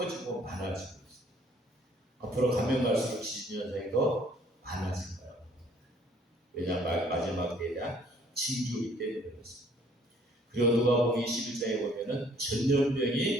많아지고 있습니다. 앞으로 가면 갈수록 지진 현상이 더 많아질 거라고 합니다. 왜냐하면 마지막 때에 대한 징조이기 때문에 그렇습니다. 그리고 누가복음 21장에 보면은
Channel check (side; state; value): both; normal; correlation 0.60